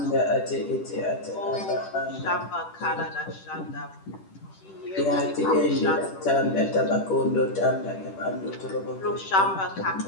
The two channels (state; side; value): late; right; 10 ms